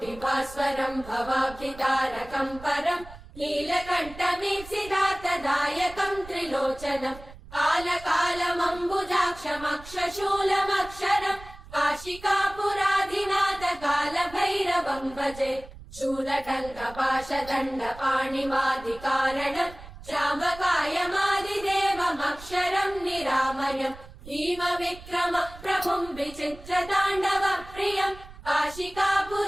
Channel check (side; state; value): right; noise; rumble, 17 dB below the sound